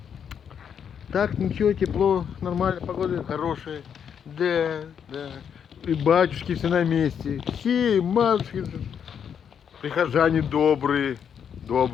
Так, ничего, тепло, нормально, погода хорошая. Да, да. И батюшки все на месте. Все, и матушки. Прихожане добрые.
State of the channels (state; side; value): quieter; right; 7.8 dB